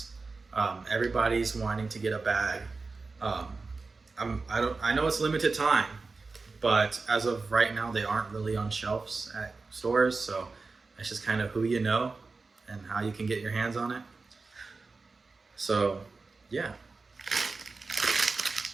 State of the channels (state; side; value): quieter; left; 4.0 dB